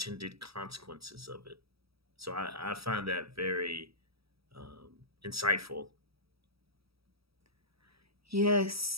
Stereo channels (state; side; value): late; left; 0.76 ms